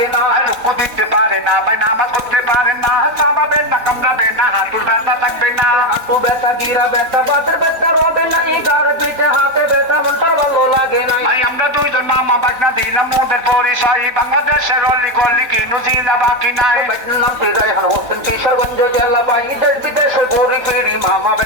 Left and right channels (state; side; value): late; left; 4.0 ms